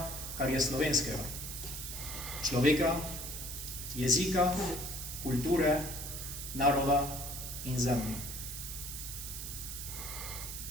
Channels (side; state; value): right; noise; hiss, 7 dB below the sound